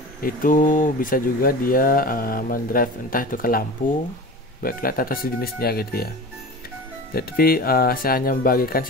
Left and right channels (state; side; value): normal; both; correlation 0.33